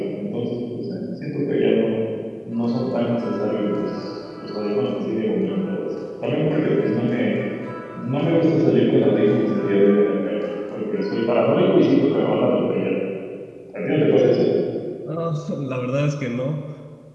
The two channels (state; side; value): identical; both; correlation 1.00